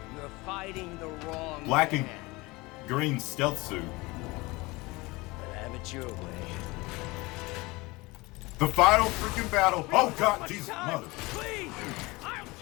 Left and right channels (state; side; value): quieter; right; 23.0 dB